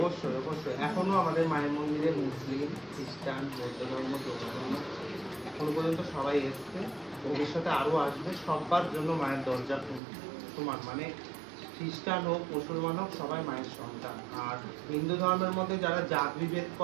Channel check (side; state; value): left; drops out; at 10.0 s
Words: অবশ্যই, এখনো আমাদের মায়ের মন্দিরে মুসলিম, খ্রিস্টান, বৌদ্ধ ধর্ম, জৈন ধর্ম এখনো পর্যন্ত সবাই এসছে, ভবিষ্যতে আরো আসবে। সবার জন্য মায়ের দরজা সমান, মানে খ্রিস্টান হোক, মুসলমান হোক, সবাই মায়ের সন্তান। আর হিন্দু ধর্মের মধ্যে যারা জাত বিভেদ